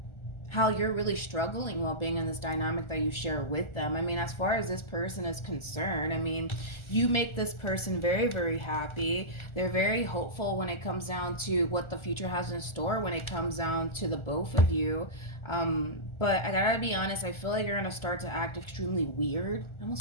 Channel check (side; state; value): right; late; 1.4 ms